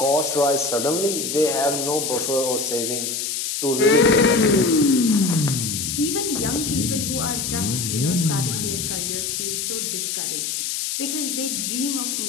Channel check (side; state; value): left; noise; hiss, 2 dB below the sound